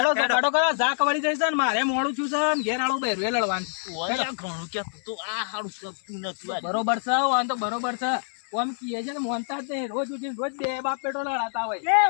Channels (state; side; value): silent; right; 59 dB below the other